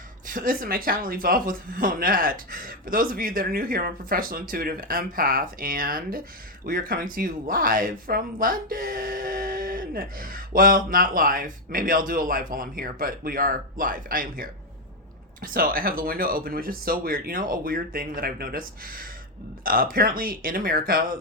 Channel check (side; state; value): both; normal; correlation 0.05